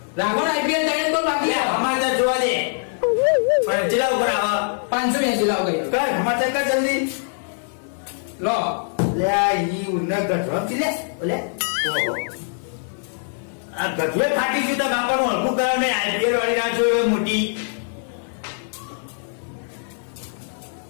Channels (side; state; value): right; silent; digital silence